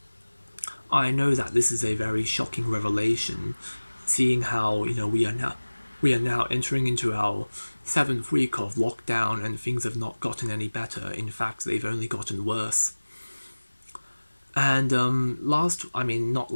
I know that this is a very shocking revelation, seeing how we are now entering into our 7th week of lockdown, and things have not gotten any better. In fact, they've only gotten worse. And not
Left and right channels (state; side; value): inverted; both; correlation -1.00